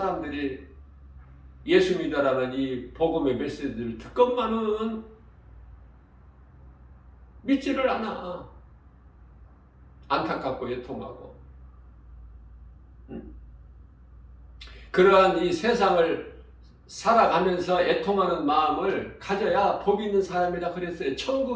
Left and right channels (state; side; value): identical; both; correlation 1.00